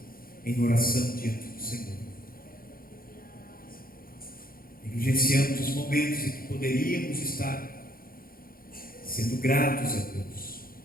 em oração diante do Senhor. Negligenciamos os momentos em que poderíamos estar sendo gratos a Deus.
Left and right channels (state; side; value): late; right; 0.42 ms